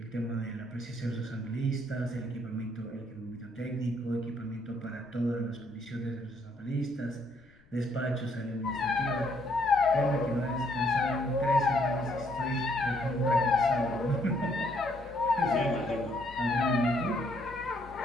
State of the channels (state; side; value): noise; left; rumble, 29 dB below the sound